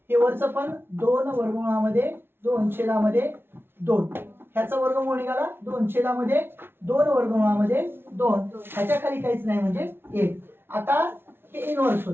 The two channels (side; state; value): left; late; 0.11 ms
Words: हे वरचं पण 2 वर्गमूळामध्ये 2 छेदामध्ये 2. ह्याचं वर्गमूळ निघाला 2 छेदामध्ये 2 वर्गमूळामध्ये 2. ह्याच्या खाली काहीच नाही म्हणजे 1. आता हे इनव्हर्स